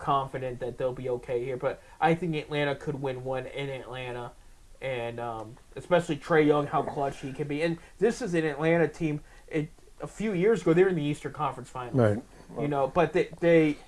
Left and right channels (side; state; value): both; identical; correlation 1.00